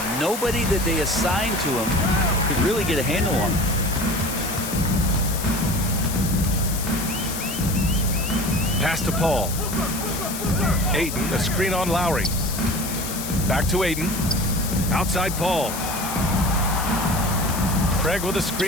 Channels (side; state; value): left; noise; hiss, 7 dB below the sound